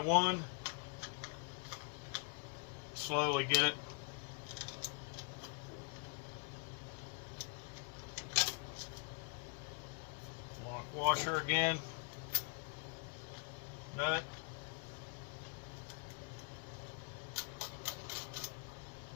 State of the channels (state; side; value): quieter; right; 35.6 dB